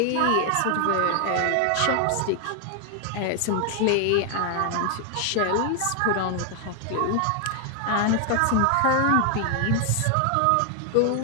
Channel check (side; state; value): both; different; correlation 0.00